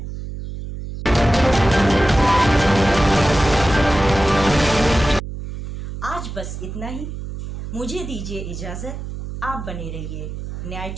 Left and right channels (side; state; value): right; noise; hum, 8 dB below the sound